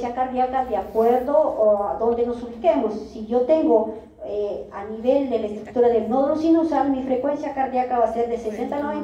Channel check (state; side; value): identical; both; correlation 1.00